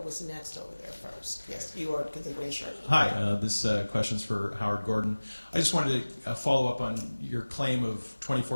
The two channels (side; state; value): both; inverted; correlation -1.00